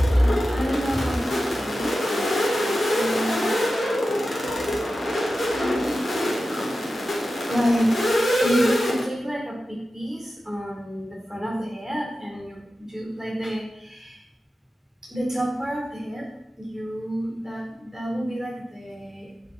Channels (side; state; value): both; normal; correlation 0.93